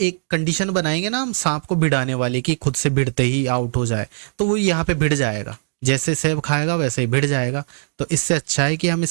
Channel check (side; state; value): left; silent; digital silence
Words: कंडीशन बनाएंगे ना हम सांप को भिड़ाने वाली, कि खुद से भिड़ते ही आउट हो जाए, तो वो यहाँ पे भिड़ जाएगा, जैसे सेब खाएगा वैसे ही भिड़ जाएगा। तो इससे अच्छा है कि हम